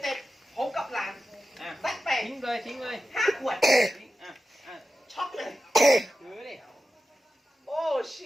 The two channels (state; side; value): normal; both; correlation 0.92